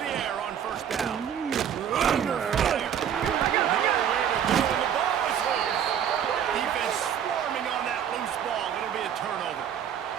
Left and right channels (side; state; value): left; quieter; 9.0 dB